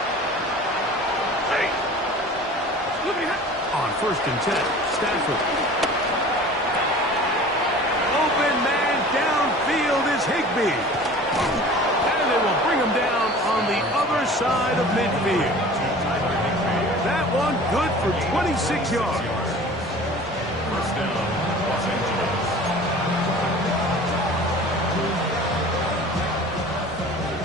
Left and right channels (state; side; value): normal; both; correlation 0.42